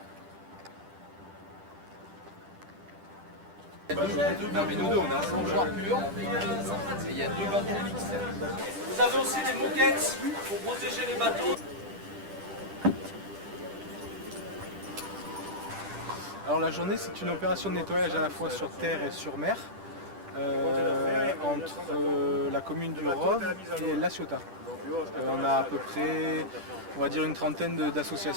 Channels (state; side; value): late; left; 10 ms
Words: Non mais nous deux on est ensemble. Il y a deux bateaux mixtes. Vous avez aussi des moquettes pour protéger les bateaux. Alors la journée, c'est une opération de nettoyage à la fois sur terre et sur mer, entre la commune du Rove et La Ciotat. On a à peu près, on va dire, une trentaine